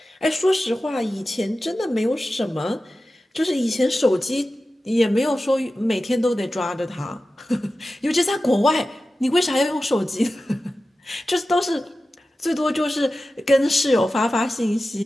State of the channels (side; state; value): both; normal; correlation 0.94